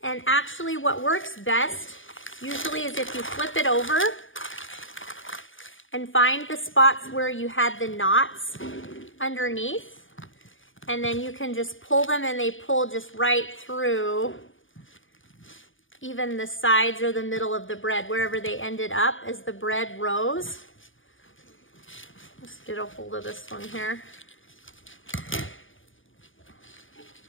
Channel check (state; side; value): late; right; 0.57 ms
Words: And actually what works best usually is if you flip it over and find the spots where you had the knots underneath, and then you can just pull them, and they pull just right through even the sides or the middle of the bread, wherever they ended up as the bread rose. Let's get a hold of this one here.